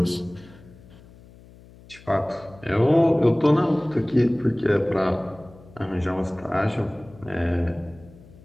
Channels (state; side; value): noise; left; hum, 23 dB below the sound